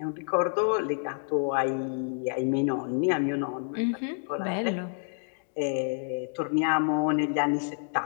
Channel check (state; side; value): silent; right; digital silence